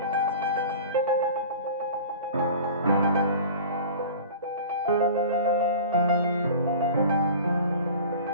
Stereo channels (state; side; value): inverted; both; correlation -0.39